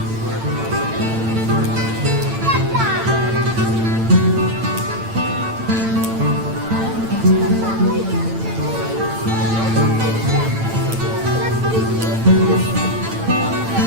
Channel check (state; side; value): late; left; 8.9 ms